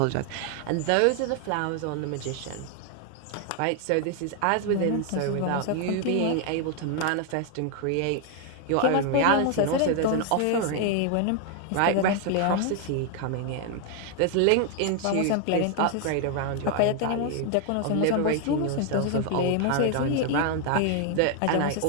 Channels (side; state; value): both; different; correlation 0.00